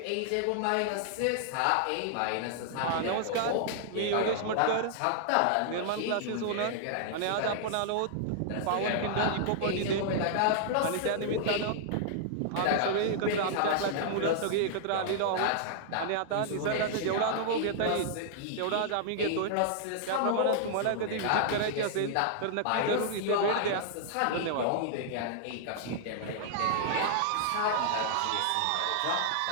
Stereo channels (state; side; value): different; both; correlation -0.01